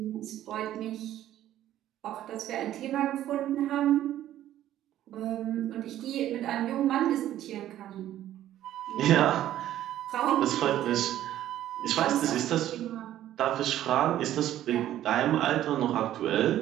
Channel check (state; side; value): quieter; left; 12.6 dB